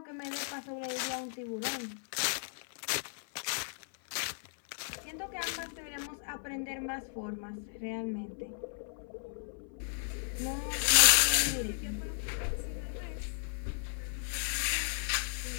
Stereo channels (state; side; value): silent; right; 54 dB below the other